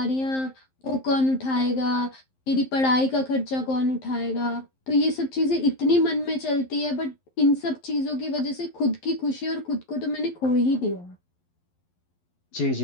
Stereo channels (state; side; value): late; right; 11 ms